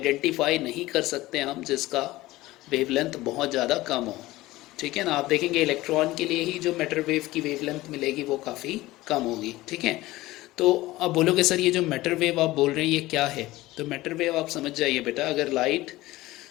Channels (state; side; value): quieter; right; 18.1 dB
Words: नहीं कर सकते हम जिसका वेवलेंथ बहुत ज़्यादा कम हो। ठीक है ना। आप देखेंगे इलेक्ट्रॉन के लिए ही जो मैटर वेव की वेवलेंथ मिलेगी वो काफ़ी कम होगी। ठीक है। तो अब बोलोगे सर ये जो मैटर वेव आप बोल रहे हैं ये क्या है? तो मैटर वेव आप समझ जाइए बेटा, अगर लाइट